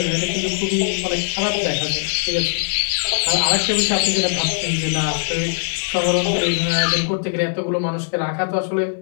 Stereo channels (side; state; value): right; silent; digital silence